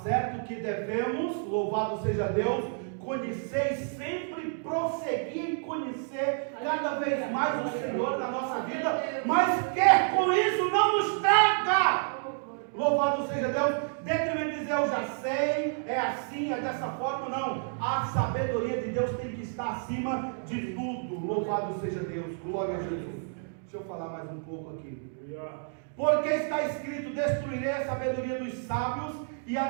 certo que devemos, louvado seja Deus, conhecer e sempre prosseguir em conhecer cada vez mais o Senhor na nossa vida, mas quer com isso não nos traga. Louvado seja Deus. Dentro de dizer eu já sei, é assim, é dessa forma, não. A sabedoria de Deus tem que estar acima de tudo. Louvado seja Deus, glória a Jesus. Deixa eu falar mais um pouco aqui. Porque está escrito: destruirei a sabedoria dos sábios e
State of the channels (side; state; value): left; silent; 58 dB below the other